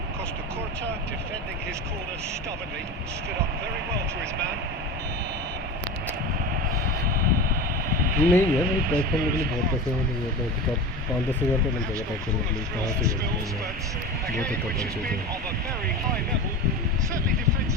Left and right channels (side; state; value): both; normal; correlation 0.29